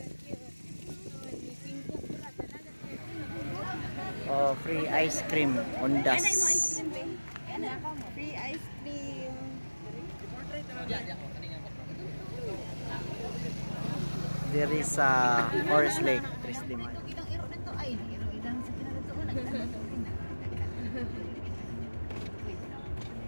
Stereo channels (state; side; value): inverted; both; correlation -1.00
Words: Ni Pingko pula talaga. Oh, free ice cream on das. Free ice cream. There is a Forest Lake, Tres de Mayo.